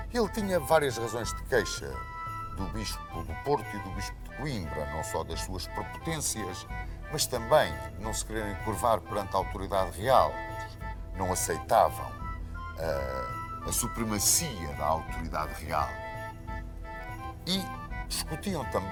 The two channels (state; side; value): identical; both; correlation 1.00